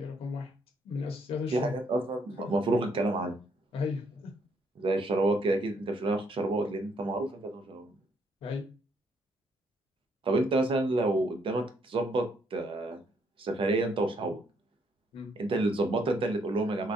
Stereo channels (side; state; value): both; normal; correlation 0.71